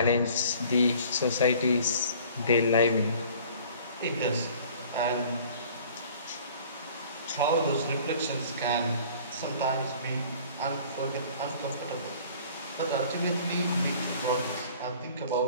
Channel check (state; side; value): inverted; both; correlation -0.50